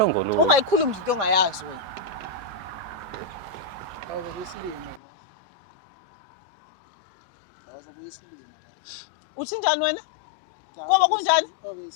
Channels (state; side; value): drops out; right; at 5.0 s